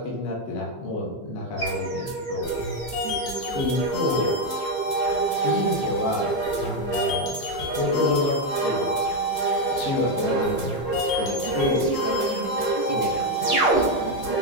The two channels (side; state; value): right; late; 15 ms